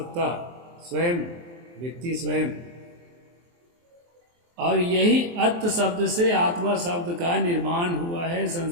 स्वयं, व्यक्ति स्वयं। और यही अत्त शब्द से आत्मा शब्द का निर्माण हुआ है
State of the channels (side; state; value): left; late; 23 ms